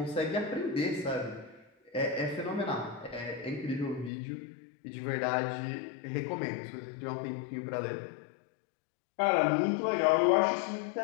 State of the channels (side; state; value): right; drops out; at 4.1 s